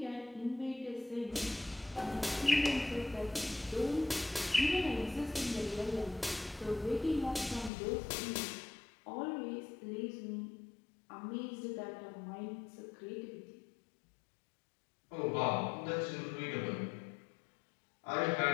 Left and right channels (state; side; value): drops out; right; at 7.7 s